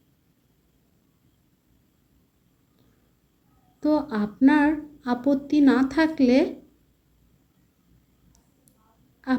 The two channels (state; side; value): identical; both; correlation 1.00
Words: তো আপনার আপত্তি না থাকলে